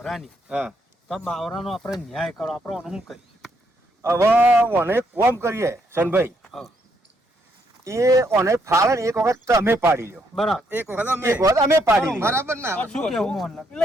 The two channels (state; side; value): normal; both; correlation 0.74